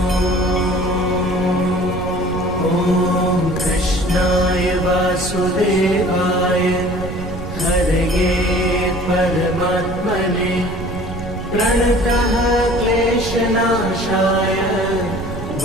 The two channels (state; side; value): noise; right; rumble, 9 dB below the sound